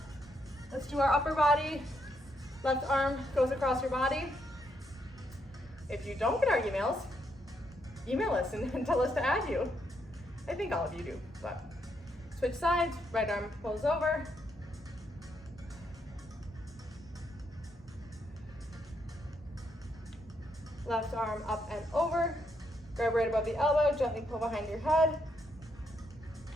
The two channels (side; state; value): both; normal; correlation 0.77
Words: Let's do our upper body. Left arm goes across your body. If you don't get our emails, email us and tell us to add you. I think all of you do, but switch sides. Right arm pulls over. Left arm up and over. Grab right above the elbow, gently pull behind your head.